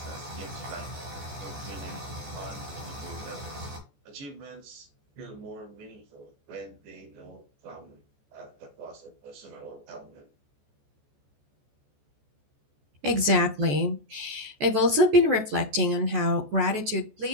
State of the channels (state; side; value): late; left; 14 ms